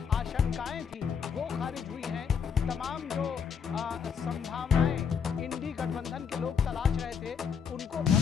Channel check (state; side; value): quieter; right; 6.8 dB